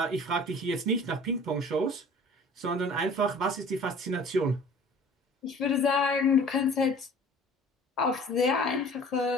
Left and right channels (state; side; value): normal; both; correlation 0.47